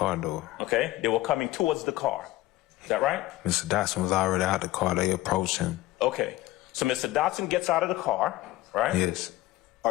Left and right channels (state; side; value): quieter; right; 16.7 dB